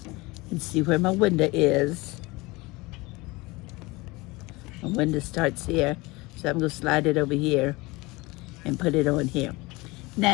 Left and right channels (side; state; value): right; quieter; 23.1 dB